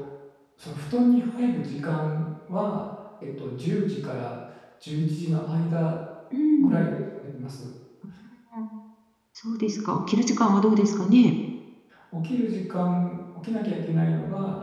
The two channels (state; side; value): identical; both; correlation 1.00